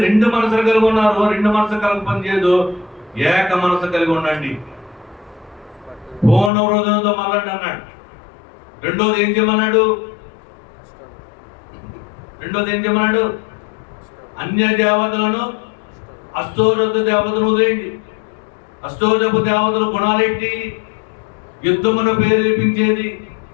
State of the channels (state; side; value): drops out; right; at 6.5 s